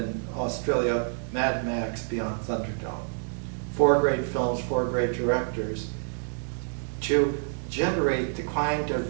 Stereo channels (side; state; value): left; silent; digital silence